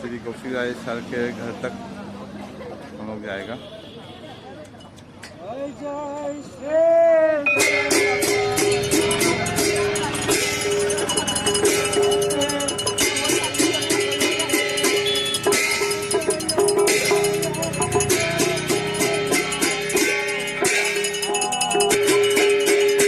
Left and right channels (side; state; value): both; identical; correlation 1.00